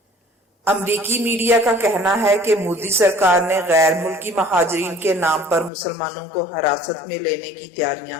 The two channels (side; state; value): right; drops out; at 5.7 s